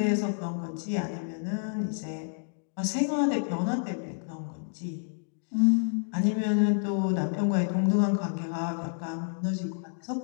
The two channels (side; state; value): right; silent; digital silence